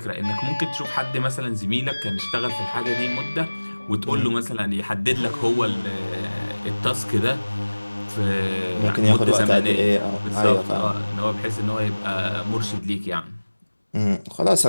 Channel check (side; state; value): both; inverted; correlation -1.00